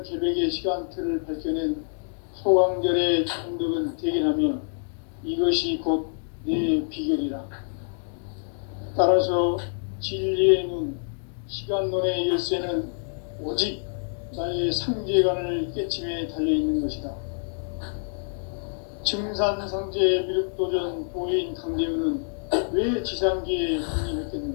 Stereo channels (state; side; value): silent; right; digital silence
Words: 개벽의 시간틀을 밝혀낸 소강절의 정덕은 대견하며 이것이 곧 내 비결이라. 따라서 진리의 눈, 시간론의 열쇠는 오직 나의 상제관을 깨침에 달려있는 것이다. 증산상제 미륵도전 도인 강대훈은 왜 지상계에